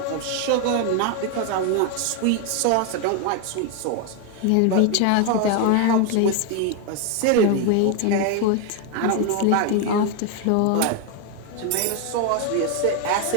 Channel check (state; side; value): different; both; correlation 0.01